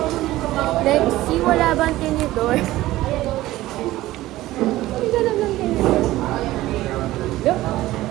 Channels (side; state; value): left; quieter; 16.4 dB